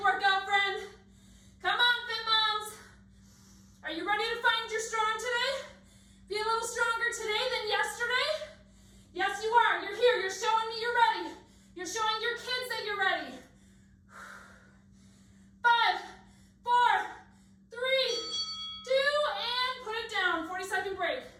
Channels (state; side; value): identical; both; correlation 1.00